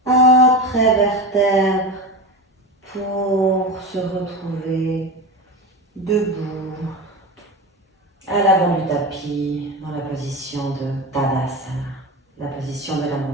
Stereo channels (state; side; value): normal; both; correlation 0.24